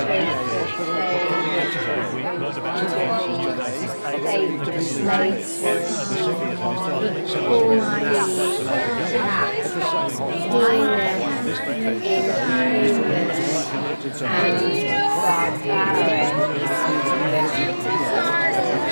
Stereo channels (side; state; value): both; inverted; correlation -1.00